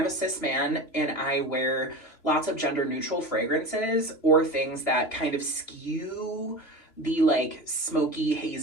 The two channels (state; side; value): late; right; 2.9 ms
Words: cis man and I wear lots of gender neutral fragrances or things that kind of skew the like smoky,